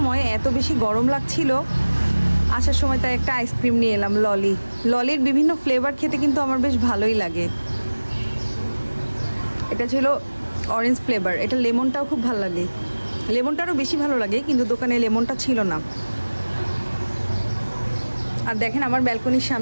এত বেশি গরম লাগছিল, আসার সময় তাই একটা আইসক্রিম নিয়ে এলাম। ললির বিভিন্ন ফ্লেভার খেতে কিন্তু আমার বেশ ভালোই লাগে। এটা ছিল অরেঞ্জ ফ্লেভার, এটা লেমনটাও খুব ভালো লাগে, লেমনটারও বেশি ভালো লাগে, কিন্তু দোকানে লেমনটা ছিল না। আর দেখেন আমার ব্যালকনির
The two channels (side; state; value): both; inverted; correlation -1.00